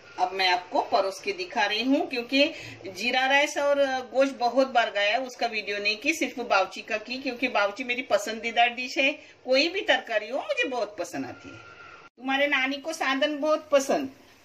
अब मैं आपको परोस के दिखा रही हूँ क्योंकि जीरा राइस और गोश्त बहुत बार गया, उसका वीडियो नहीं की, सिर्फ बाउची का की क्योंकि बाउची मेरी पसंदीदा डिश है। कोई भी तरकारी हो मुझे बहुत पसंद आती है। तुम्हारे नानी को साधन बहुत पसंद,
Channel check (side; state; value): both; identical; correlation 1.00